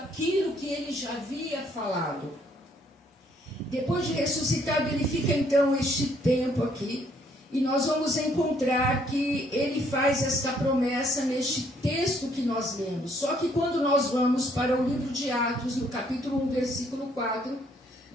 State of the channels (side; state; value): both; normal; correlation 0.66